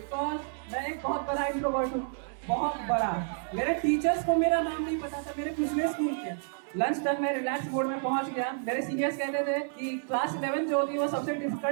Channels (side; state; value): left; silent; digital silence